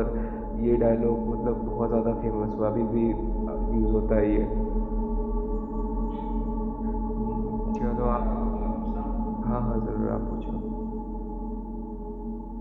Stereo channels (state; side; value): identical; both; correlation 1.00